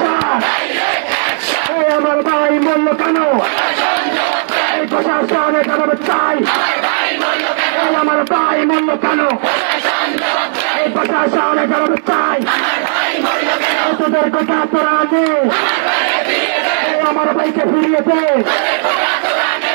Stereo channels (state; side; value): silent; left; digital silence